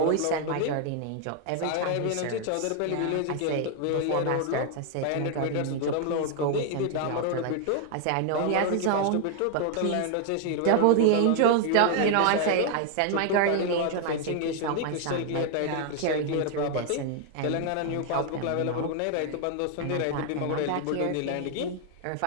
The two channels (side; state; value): both; different; correlation 0.00